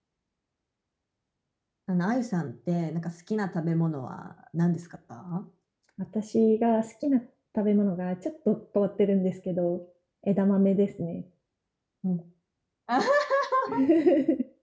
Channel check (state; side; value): identical; both; correlation 1.00